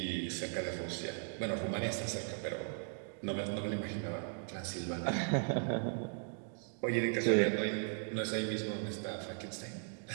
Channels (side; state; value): left; silent; 53 dB below the other